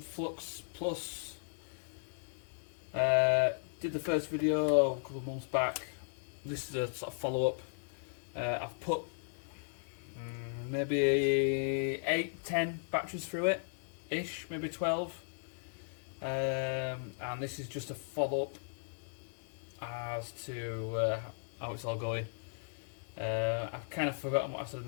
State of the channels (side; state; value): right; silent; digital silence